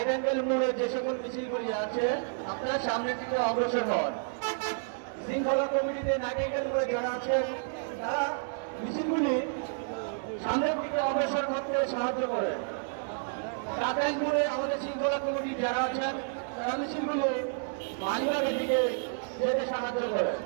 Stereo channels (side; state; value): left; silent; digital silence